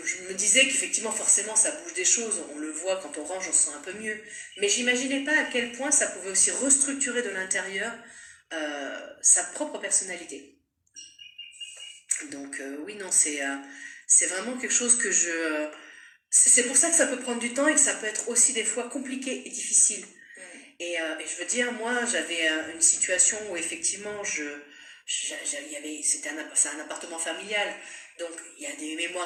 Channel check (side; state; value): both; identical; correlation 1.00